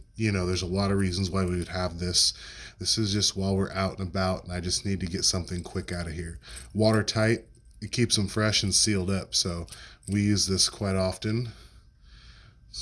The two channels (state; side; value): identical; both; correlation 1.00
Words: you know, there's a lot of reasons why we would have this. This is just while we're out and about, and I just need to get something quick out of here. Watertight, it keeps them fresh and sealed up, so we use this quite often.